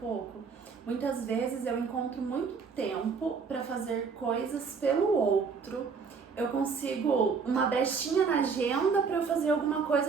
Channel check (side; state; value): left; quieter; 5.4 dB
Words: pouco, muitas vezes eu encontro muito tempo para fazer coisas pelo outro. Eu consigo uma brechinha na agenda para eu fazer alguma